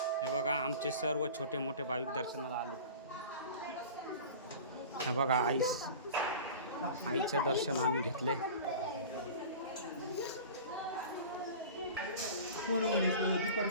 हे बघा आमचे सर्व छोटे मोठे भाविक दर्शनाला आले. हे बघा आईचं दर्शन आम्ही घेतले.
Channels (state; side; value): inverted; both; correlation -0.37